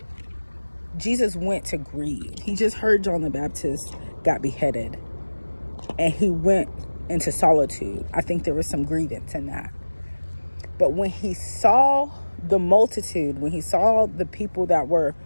Jesus went to grieve. He just heard John the Baptist got beheaded, and he went into solitude. I think there was some grievance in that. But when he saw the multitude, when he saw the people that were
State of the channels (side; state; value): both; inverted; correlation -1.00